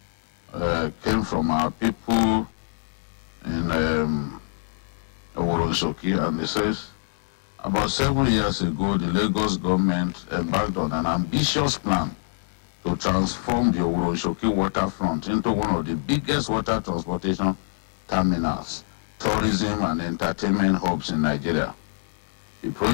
came from our people in Oworosoki, and it says, about 7 years ago, the Lagos government embarked on an ambitious plan to transform the Oworosoki waterfront into one of the biggest water transportation terminals, tourism and entertainment hubs in Nigeria. The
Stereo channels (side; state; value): right; silent; digital silence